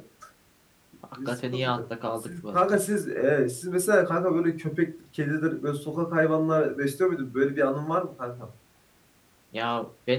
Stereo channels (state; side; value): identical; both; correlation 1.00